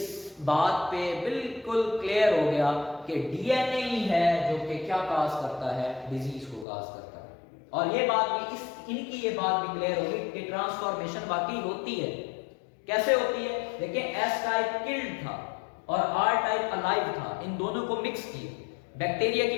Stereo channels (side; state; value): right; drops out; at 6.7 s